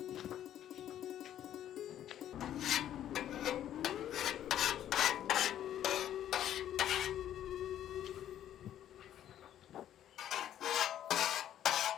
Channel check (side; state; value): right; quieter; 11.2 dB